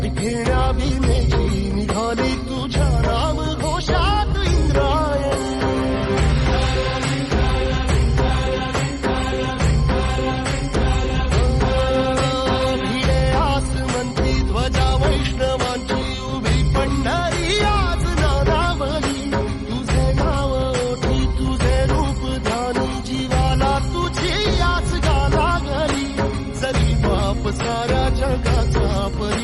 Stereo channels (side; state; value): both; identical; correlation 1.00